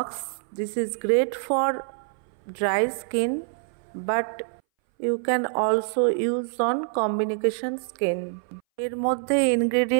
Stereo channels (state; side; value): silent; left; 60 dB below the other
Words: This is great for dry skin but you can also use on combination skin. এর মধ্যে